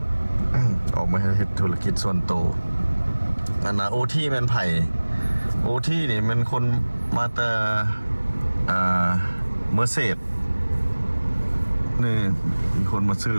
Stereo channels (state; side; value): inverted; both; correlation -1.00